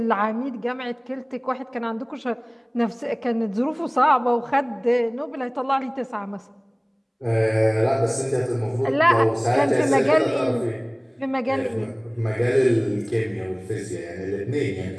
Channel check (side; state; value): both; identical; correlation 1.00